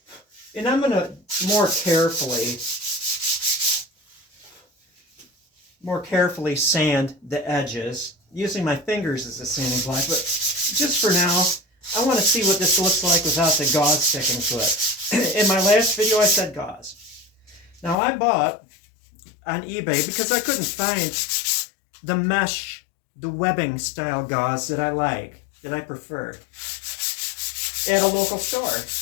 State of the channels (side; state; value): right; drops out; at 17.9 s